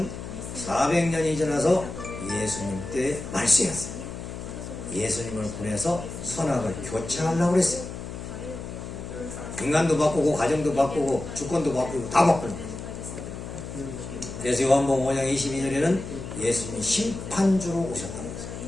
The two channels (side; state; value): left; noise; hum, 9 dB below the sound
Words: 2400년이 지나서 예수님 때 말세였어요. 예수님을 보내서 선악을 교체하려고 그랬어요. 인간도 바꾸고 가정도 바꾸고 주권도 바꾸고 다 바꾸려고. 그래서 요한복음 5장 22절에는 예수님이 심판주로 오셨다고 했어요.